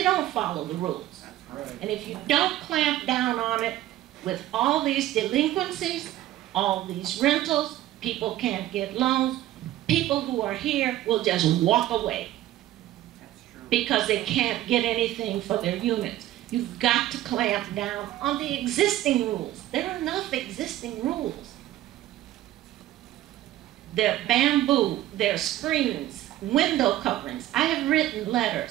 don't follow the rules. That's right. And if you don't clamp down on it with all these delinquencies, all these rentals, people can't get loans, people who are here will just walk away because they can't get anything for their units. You've got to clamp down on the existing rules. There are enough existing rules. There are bamboo, there are screens, window coverings. I have written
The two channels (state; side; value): quieter; left; 14.3 dB